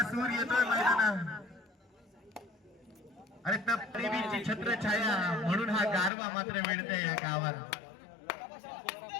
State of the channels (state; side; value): drops out; right; at 6.1 s